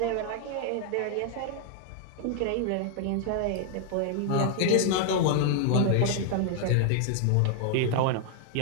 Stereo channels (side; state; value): both; different; correlation 0.00